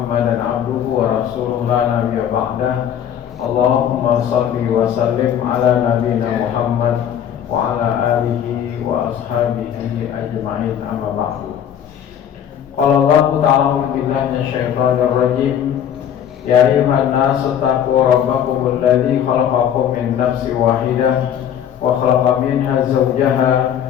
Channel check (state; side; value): quieter; right; 9.4 dB